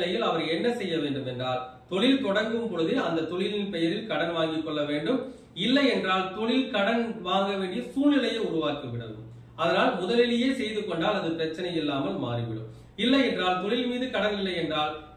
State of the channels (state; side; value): identical; both; correlation 1.00